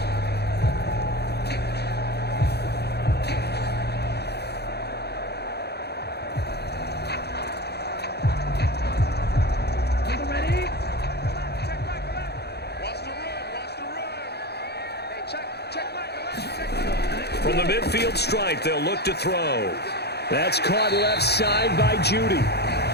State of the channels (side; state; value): right; late; 0.48 ms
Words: From the midfield stripe, they'll look to throw. That's caught left side by Judy.